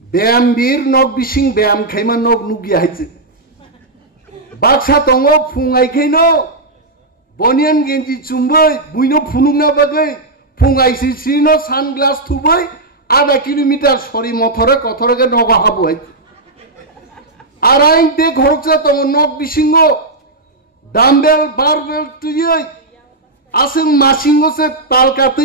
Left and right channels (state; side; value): quieter; left; 3.0 dB